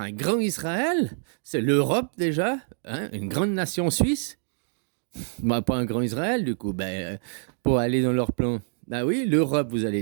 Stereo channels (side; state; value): left; silent; digital silence